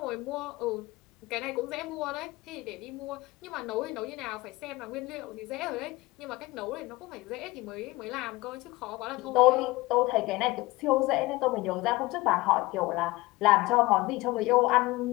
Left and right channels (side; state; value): right; quieter; 20.7 dB